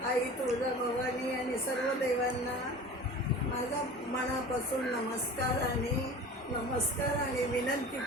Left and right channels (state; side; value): normal; both; correlation 0.38